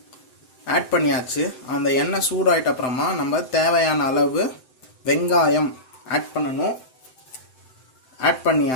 ஆட் பண்ணியாச்சு. அந்த எண்ணெய் சூடாயிட்ட அப்புறமா நம்ம தேவையான அளவு வெங்காயம் ஆட் பண்ணணும். ஆட்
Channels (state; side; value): late; right; 7.8 ms